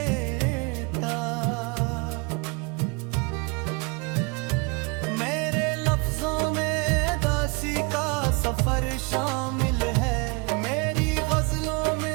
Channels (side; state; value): left; quieter; 30.0 dB